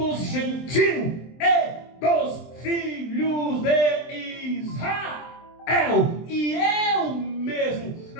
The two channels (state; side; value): late; right; 23 ms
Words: gentios e dos filhos de Israel. E eu mesmo